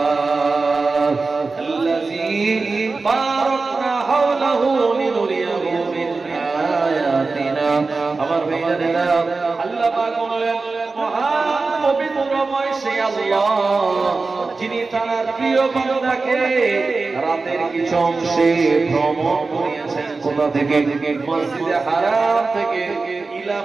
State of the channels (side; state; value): left; quieter; 3.9 dB